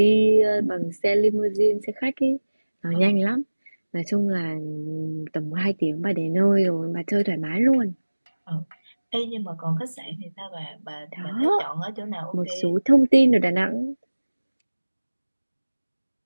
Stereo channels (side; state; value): both; inverted; correlation -1.00